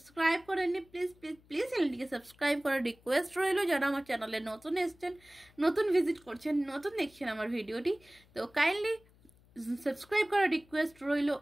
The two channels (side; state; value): left; noise; hum, 29 dB below the sound